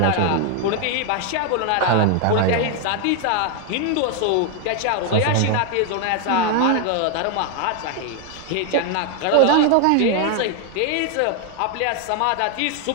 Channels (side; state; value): both; different; correlation 0.01